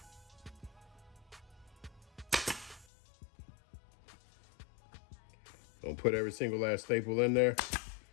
Don't put every single last staple in there.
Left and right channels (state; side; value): drops out; right; at 2.9 s